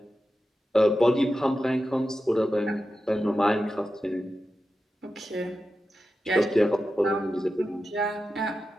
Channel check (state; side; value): normal; both; correlation 0.91